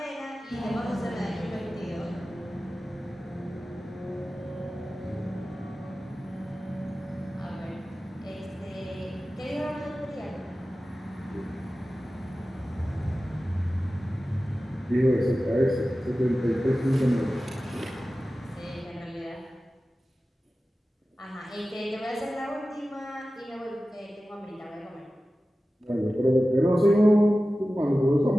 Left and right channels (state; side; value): normal; both; correlation 0.95